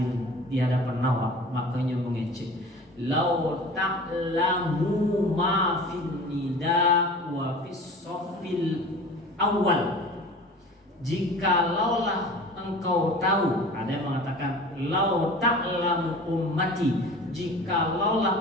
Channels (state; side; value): normal; both; correlation 0.40